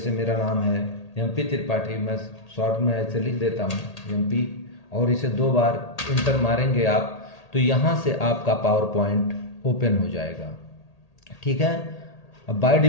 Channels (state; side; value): late; right; 1.8 ms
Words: मेरा नाम है एमपी त्रिपाठी, मैं शॉर्ट में ऐसे लिख देता हूँ एमपी, और इसे 2 बार इंटर मारेंगे आप तो यहाँ से आपका पावर पॉइंट ओपन हो जाएगा। ठीक है, अब बाय